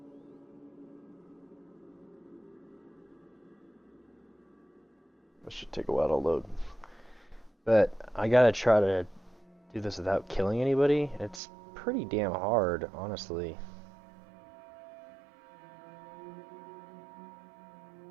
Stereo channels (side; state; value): left; drops out; at 11.4 s